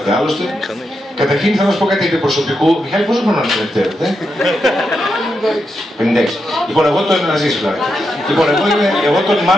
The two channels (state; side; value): normal; both; correlation 0.85